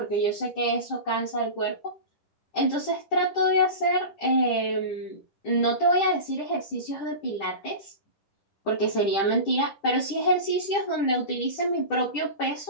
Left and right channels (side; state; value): right; late; 10 ms